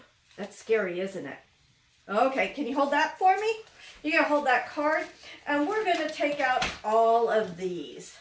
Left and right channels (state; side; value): identical; both; correlation 1.00